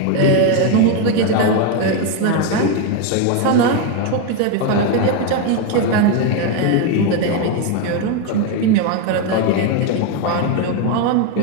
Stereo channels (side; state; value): both; different; correlation 0.02